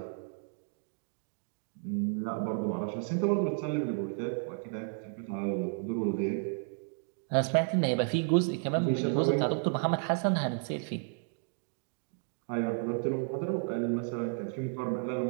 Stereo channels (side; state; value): left; silent; 56 dB below the other